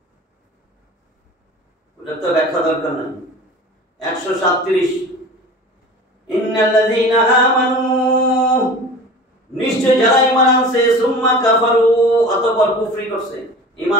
ওটা তো ব্যাখ্যা দরকার নাই। 137 ইন্নাল্লাযীনা আমানু, নিশ্চয় যারা ঈমান আনছে, সুম্মা কাফারু, অতঃপর কুফরি করছে।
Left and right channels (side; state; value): both; normal; correlation 0.38